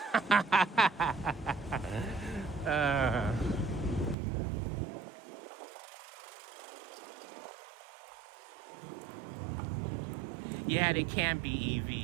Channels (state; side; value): drops out; left; at 4.2 s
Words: Yeah, they can be,